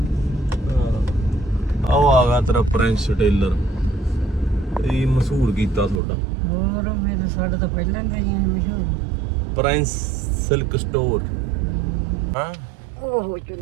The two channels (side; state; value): left; drops out; at 6.0 s